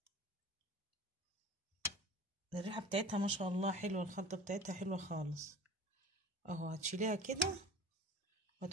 الريحه بتاعتها ما شاء الله حلوه، الخلطه بتاعتها حلوه خالص اهو. هتشيليها كده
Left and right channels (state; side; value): normal; both; correlation 0.40